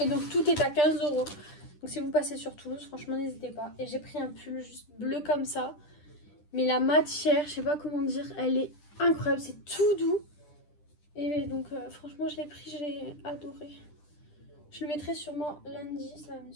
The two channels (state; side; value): late; right; 10 ms